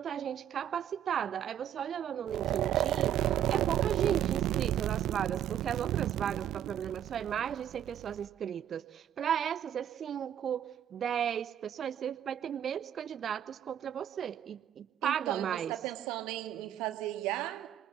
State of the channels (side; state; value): left; quieter; 10.2 dB